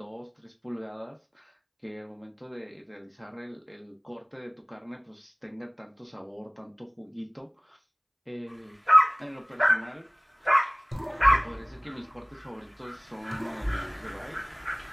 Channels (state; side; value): identical; both; correlation 1.00